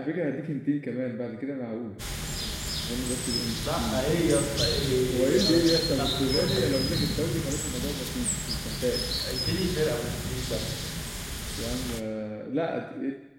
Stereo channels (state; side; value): identical; both; correlation 1.00